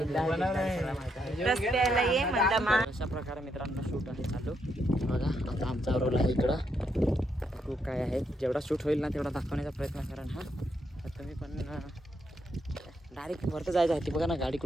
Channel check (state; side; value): normal; both; correlation 0.78